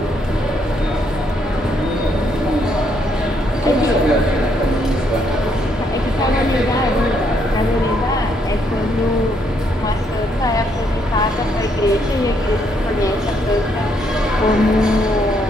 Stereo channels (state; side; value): normal; both; correlation 0.73